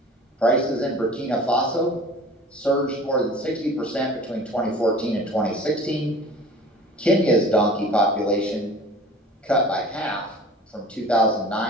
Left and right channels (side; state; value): both; normal; correlation 0.43